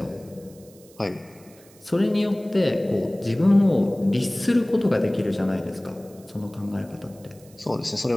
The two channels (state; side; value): noise; right; hiss, 26 dB below the sound